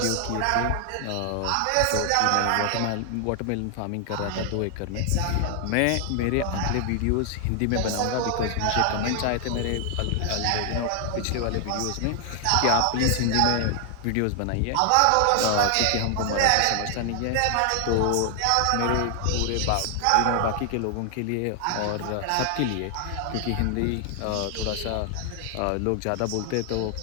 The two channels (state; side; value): different; both; correlation 0.00